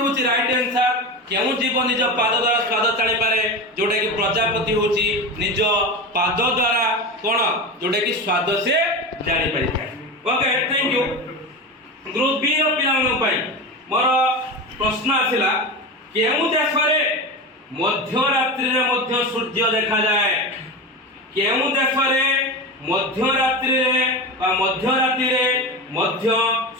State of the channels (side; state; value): both; normal; correlation 0.24